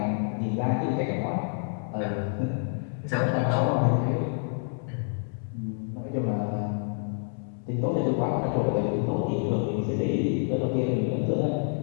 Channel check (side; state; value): right; silent; 60 dB below the other